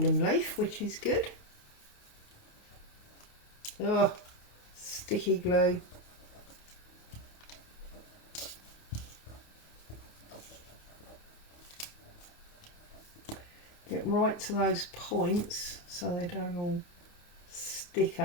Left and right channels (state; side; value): late; right; 28 ms